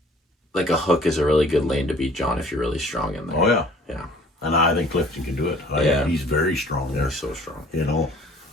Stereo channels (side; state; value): both; normal; correlation 0.53